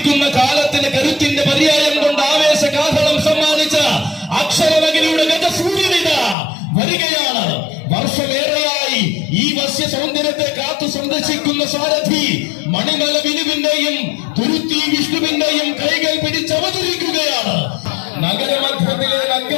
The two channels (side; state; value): right; drops out; at 6.4 s